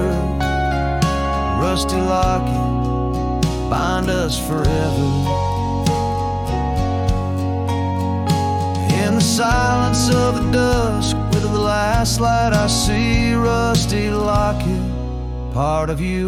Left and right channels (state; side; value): identical; both; correlation 1.00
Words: rusty locket, bind us forever. In the silence of the dusk, with the last light I see, rusty locket, part of